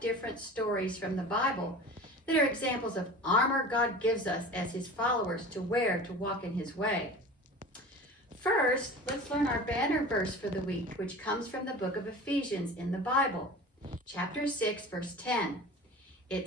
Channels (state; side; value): normal; both; correlation 0.37